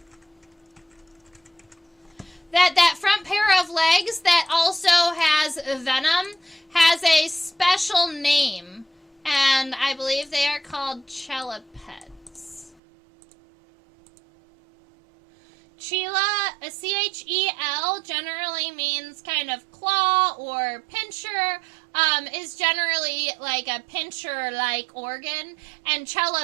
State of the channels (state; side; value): drops out; left; at 12.8 s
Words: that front pair of legs that also has venom has a special name, and I believe they are called chelipeds. Chela, a C-H-E-L, generally means kind of claw or pincher, is generally like a pincher-like organ, and